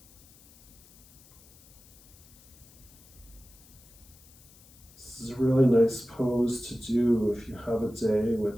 This is a really nice pose to do if you have a day,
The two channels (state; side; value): noise; left; hiss, 25 dB below the sound